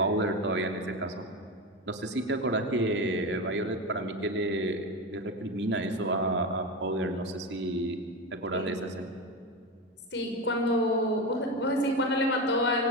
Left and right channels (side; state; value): both; normal; correlation 0.20